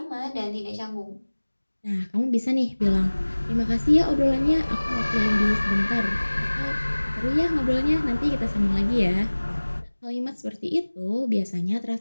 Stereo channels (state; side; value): inverted; both; correlation -1.00